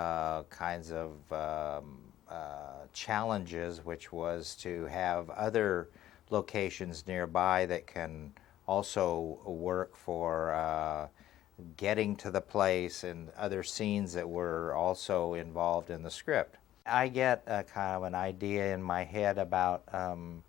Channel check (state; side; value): quieter; right; 13.1 dB